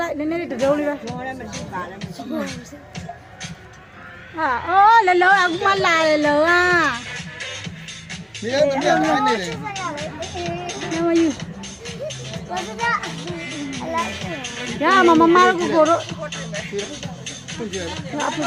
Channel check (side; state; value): both; identical; correlation 1.00